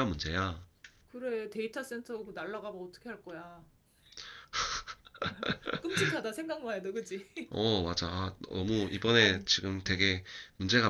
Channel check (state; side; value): identical; both; correlation 1.00